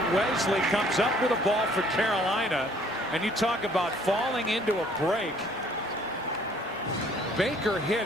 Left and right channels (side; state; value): both; normal; correlation 0.58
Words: Wesley comes up with a ball for Carolina, and you talk about falling into a break. Baker